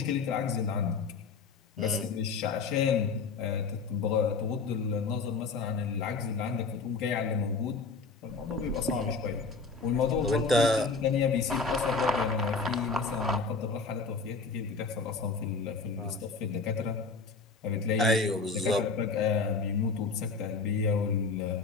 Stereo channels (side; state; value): right; quieter; 4.4 dB